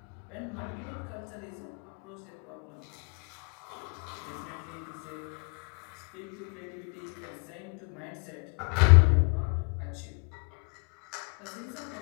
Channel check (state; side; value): quieter; right; 34.9 dB